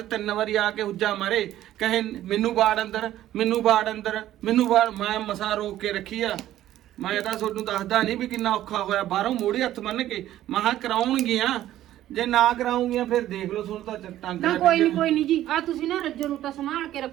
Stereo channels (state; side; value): quieter; left; 13.2 dB